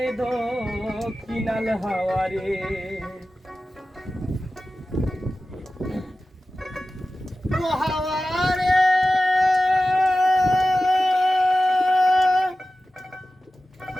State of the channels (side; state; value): both; normal; correlation 0.95